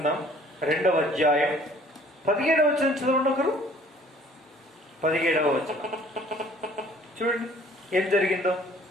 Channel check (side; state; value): both; normal; correlation 0.55